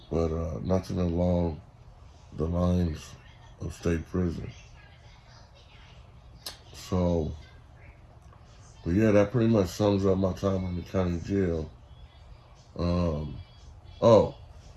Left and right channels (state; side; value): identical; both; correlation 1.00